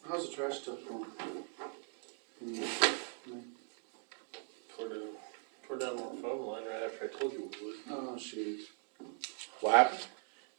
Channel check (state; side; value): silent; left; 51 dB below the other